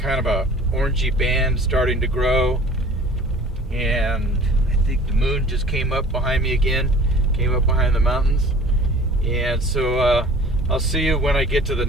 of a orangey band starting to grow, and I think the moon just came up behind me again, came up behind the mountains. And so I'll see you when I get to the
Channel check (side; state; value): both; normal; correlation 0.46